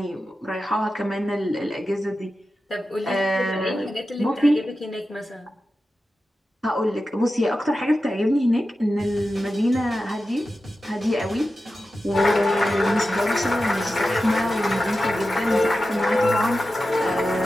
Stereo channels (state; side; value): normal; both; correlation 0.92